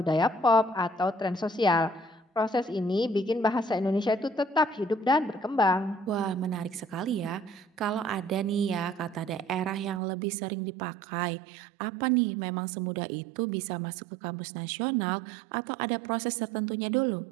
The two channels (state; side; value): drops out; left; at 10.0 s